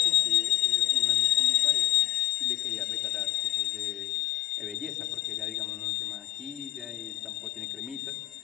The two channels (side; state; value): right; quieter; 14.7 dB